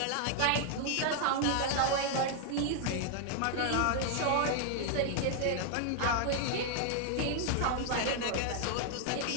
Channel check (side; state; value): both; different; correlation 0.00